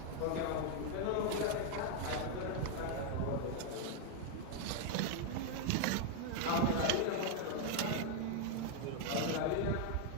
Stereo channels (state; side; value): different; both; correlation 0.00